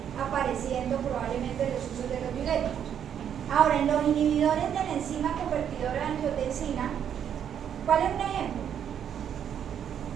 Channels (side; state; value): left; quieter; 8.9 dB